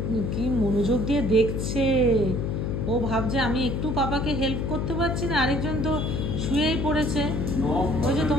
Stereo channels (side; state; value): left; noise; hum, 1 dB below the sound